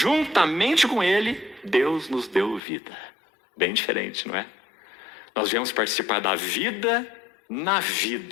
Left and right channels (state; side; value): drops out; right; at 2.6 s